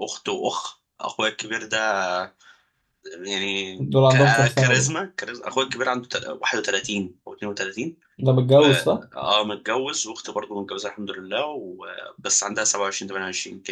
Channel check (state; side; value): identical; both; correlation 1.00